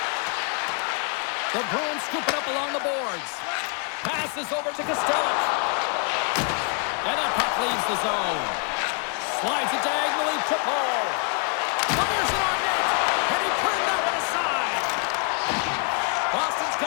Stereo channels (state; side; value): quieter; right; 38.5 dB